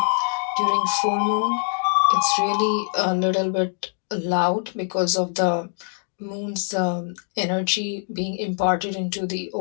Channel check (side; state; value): right; silent; 60 dB below the other